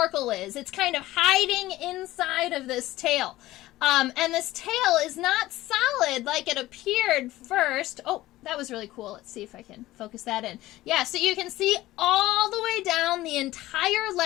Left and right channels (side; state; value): right; quieter; 16.6 dB